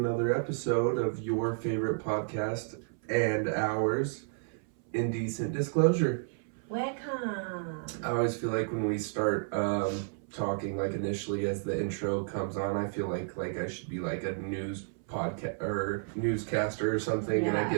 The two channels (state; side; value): silent; left; 57 dB below the other